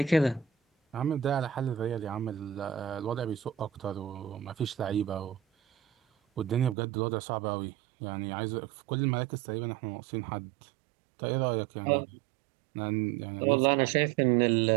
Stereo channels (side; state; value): left; drops out; at 6.8 s